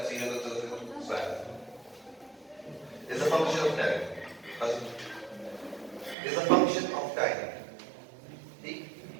see the swap. It's a function of time. It's a function of time. See?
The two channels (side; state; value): left; drops out; at 6.2 s